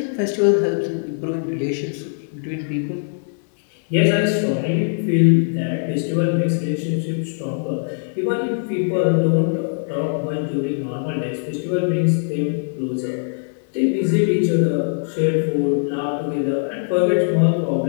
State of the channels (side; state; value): right; silent; digital silence